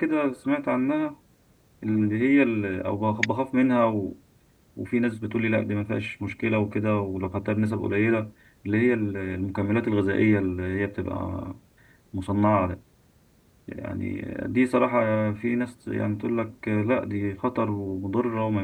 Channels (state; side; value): identical; both; correlation 1.00